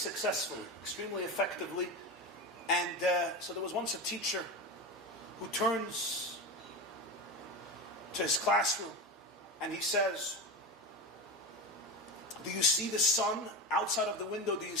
extremely effectively. And so there was once a teacher who turns to his classroom and he says, "Do you see the sun outside of the window? Do you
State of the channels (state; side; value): normal; both; correlation 0.22